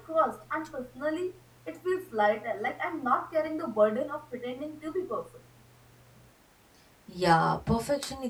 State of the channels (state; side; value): identical; both; correlation 1.00